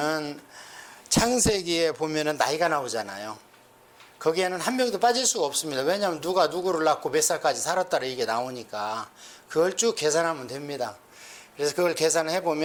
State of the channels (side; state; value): both; identical; correlation 1.00